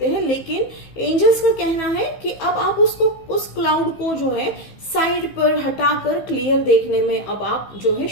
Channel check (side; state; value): right; late; 15 ms